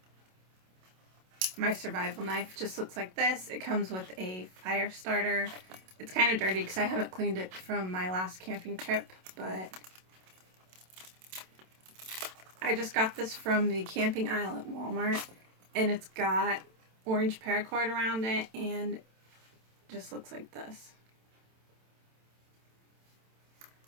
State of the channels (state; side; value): late; left; 27 ms